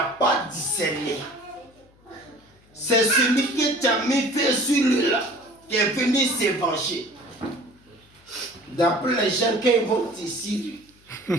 pas discerné. C'est celui qui t'a mis fait sur lui là, qui est venu se venger. D'après les gens, quand ils vont t'ici, quand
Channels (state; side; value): noise; left; hum, 30 dB below the sound